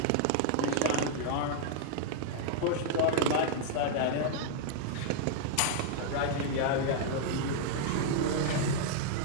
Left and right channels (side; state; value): both; different; correlation -0.01